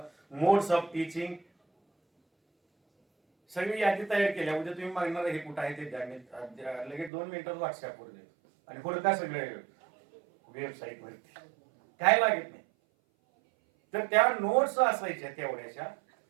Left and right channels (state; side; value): drops out; left; at 7.1 s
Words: of teaching, सगळी यादी तयार केल्या. उद्या तुम्ही मागणार हे कुठं आहे ते द्या, लगेच 2 मिनिटात व्हॉट्सअपवर देतो. आणि पुढे काय सगळे वेबसाईट वरती काय लागत नाही. तर त्या नोट्स असायच्या तेवढ्याच्या,